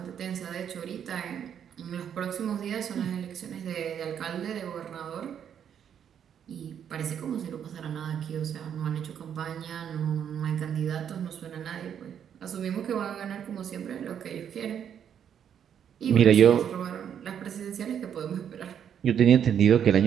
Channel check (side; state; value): left; quieter; 8.7 dB